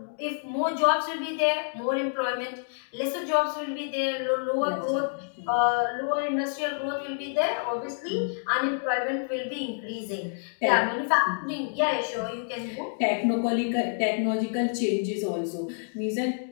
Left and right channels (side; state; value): right; silent; digital silence